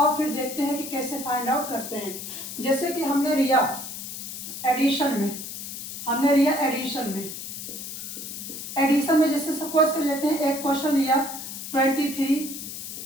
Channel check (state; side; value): noise; left; hiss, 8 dB below the sound